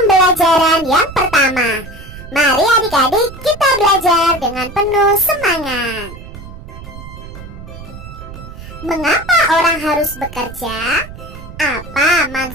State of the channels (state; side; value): noise; right; rumble, 14 dB below the sound